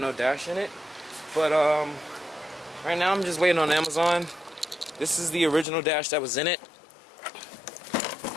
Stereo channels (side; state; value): right; drops out; at 5.7 s